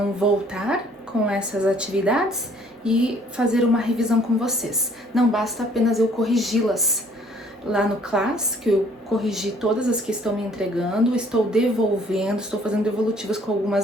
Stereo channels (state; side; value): normal; both; correlation 0.59